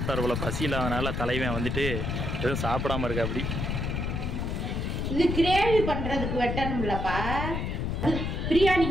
போல. பசி இல்லாதனால தலைவன் வந்துட்டு எதுவும் சாப்பிடாம இருக்கா. அப்படி இது கிரேவி பண்றதுக்கு வெட்டணும்லப்பா.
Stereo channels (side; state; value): left; noise; rumble, 2 dB below the sound